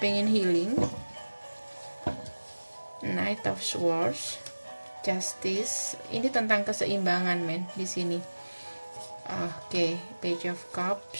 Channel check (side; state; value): both; inverted; correlation -1.00